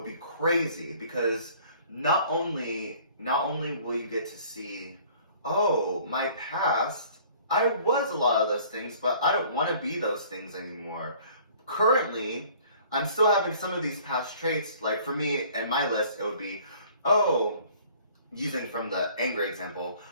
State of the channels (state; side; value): inverted; both; correlation -0.53